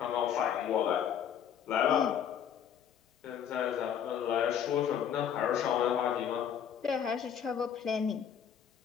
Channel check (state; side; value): quieter; right; 8.7 dB